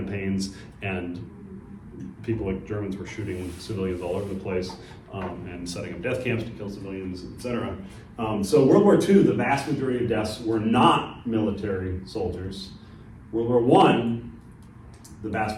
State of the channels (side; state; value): both; identical; correlation 1.00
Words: and people like Germans were shooting civilians all over the place and setting up death camps to kill civilians, etc. So World War II, the vast majority of deaths were not military soldiers. World War I, the